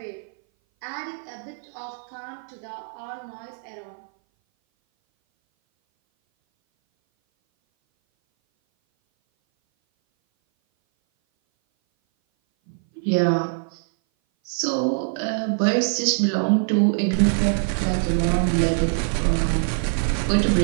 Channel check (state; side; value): silent; left; 58 dB below the other